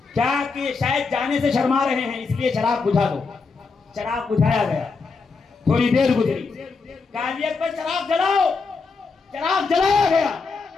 کیا کہ شاید جانے سے شرما رہے ہیں، اس لیے چراغ بجھا دو۔ چراغ بجھایا گیا، تھوڑی دیر گزری، قاضیت پر چراغ جلاؤ، چراغ جلایا گیا۔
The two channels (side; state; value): right; quieter; 4.5 dB